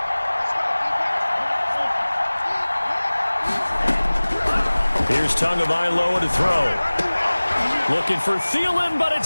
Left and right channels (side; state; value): both; inverted; correlation -1.00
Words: Here's Tagovailoa to throw. Looking for Thielen, but